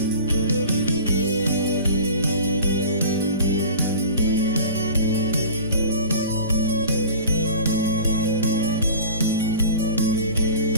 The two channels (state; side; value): inverted; both; correlation -0.40